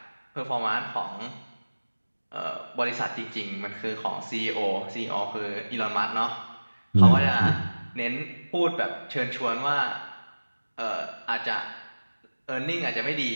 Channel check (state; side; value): inverted; both; correlation -1.00